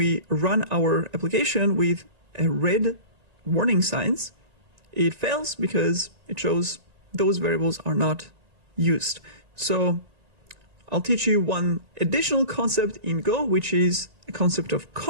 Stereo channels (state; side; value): late; left; 1.9 ms